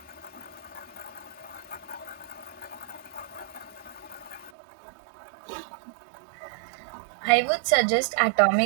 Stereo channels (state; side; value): drops out; left; at 4.5 s